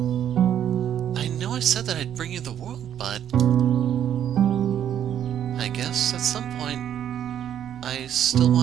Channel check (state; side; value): quieter; left; 10.0 dB